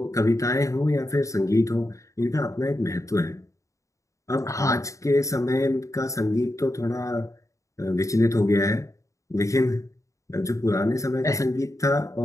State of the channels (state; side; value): late; right; 0.15 ms